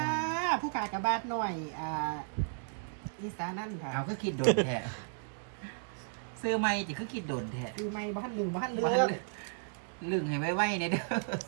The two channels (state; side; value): silent; left; digital silence